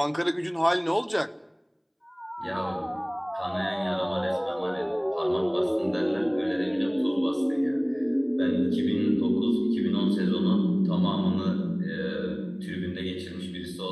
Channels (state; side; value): identical; both; correlation 1.00